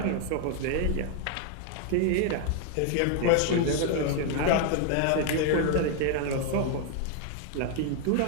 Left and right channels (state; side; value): different; both; correlation 0.00